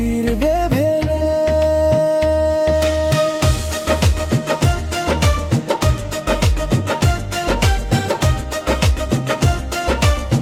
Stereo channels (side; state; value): both; identical; correlation 1.00